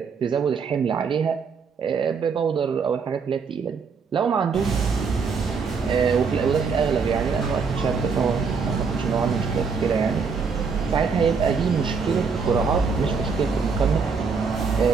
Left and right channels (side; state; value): left; quieter; 5.4 dB